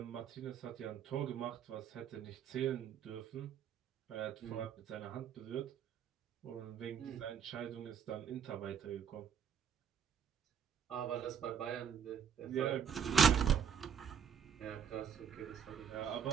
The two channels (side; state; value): left; quieter; 7.6 dB